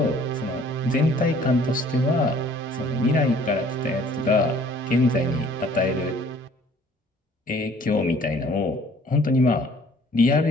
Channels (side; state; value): both; normal; correlation 0.55